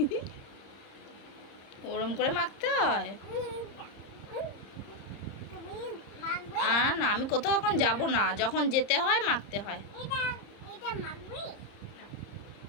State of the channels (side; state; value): right; late; 30 ms